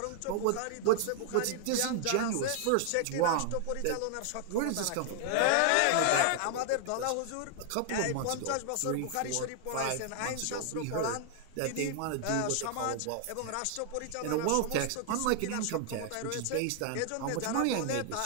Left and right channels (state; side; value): different; both; correlation 0.00